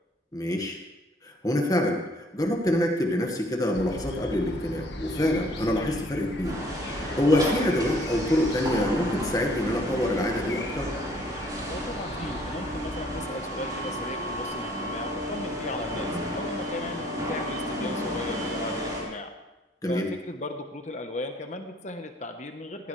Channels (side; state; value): both; normal; correlation 0.61